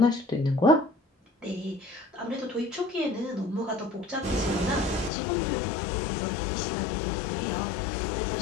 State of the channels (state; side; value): drops out; right; at 5.1 s